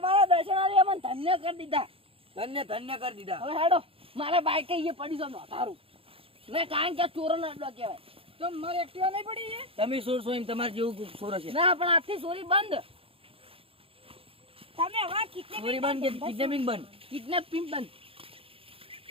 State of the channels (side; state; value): left; late; 0.27 ms